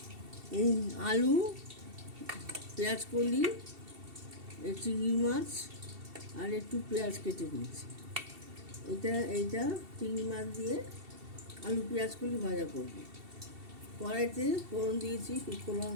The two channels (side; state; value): left; late; 2.7 ms